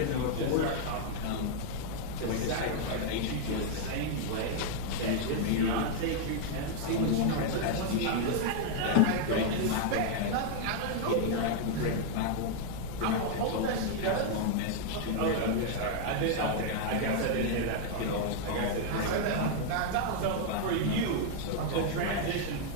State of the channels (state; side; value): different; both; correlation 0.00